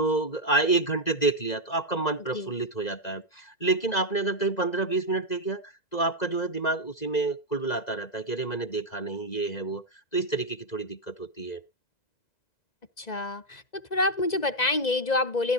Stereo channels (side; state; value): right; late; 2.0 ms